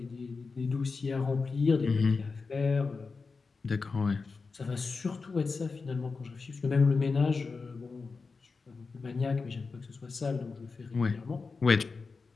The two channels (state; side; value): quieter; right; 4.5 dB